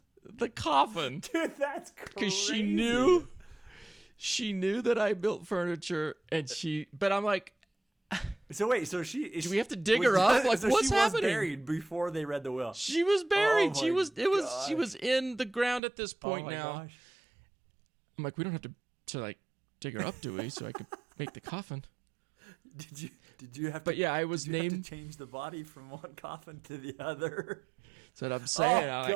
the coffin. Dude, that's crazy. Because she knew that I built furniture, but I'm like, so wait, do we have to dig her up? Like, so what's she happening? Was buried before they read the will. She was buried. Oh, She was in the ground at this point now. Gosh. I'm like, we don't have to dig her up, do we? So I could make the coffin. Did you have to? But yeah, I was named. Have to change the body from one coffin to the other. That's what I'm saying. Oh,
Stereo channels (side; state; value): left; drops out; at 15.8 s